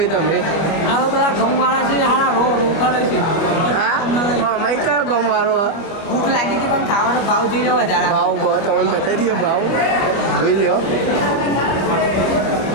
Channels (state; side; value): late; right; 25 ms